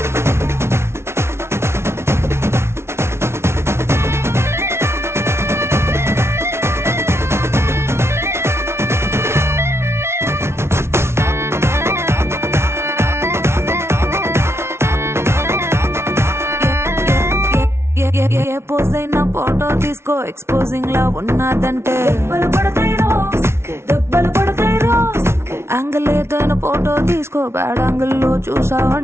ఏ పోజ్ అయినా ఫోటో తీసుకో ఎక్స్పోజింగ్ లా ఉన్నదంటే దెబ్బలు పడతాయిరో దెబ్బలు పడతాయిరో యాంగిల్ ఏదైనా ఫోటో తీసుకో బ్యాడ్ యాంగిల్ లో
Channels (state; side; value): late; left; 0.13 ms